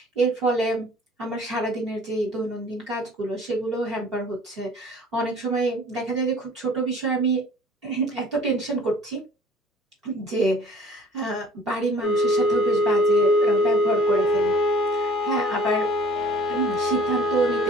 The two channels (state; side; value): normal; both; correlation 0.51